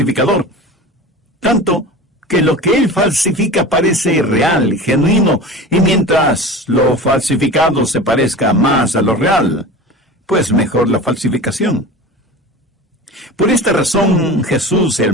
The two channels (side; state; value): both; normal; correlation 0.34